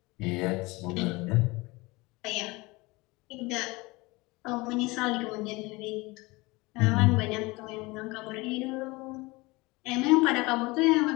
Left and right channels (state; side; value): quieter; right; 23.4 dB